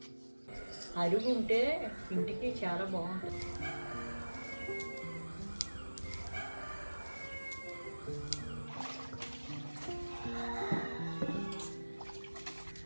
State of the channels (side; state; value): both; inverted; correlation -1.00